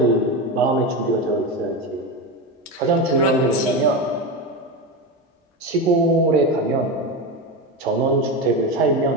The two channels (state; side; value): normal; both; correlation 0.18